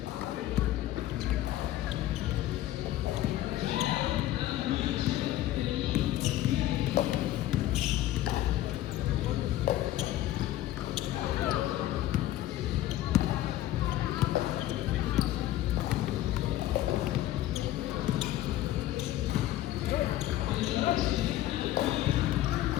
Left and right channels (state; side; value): quieter; right; 14.1 dB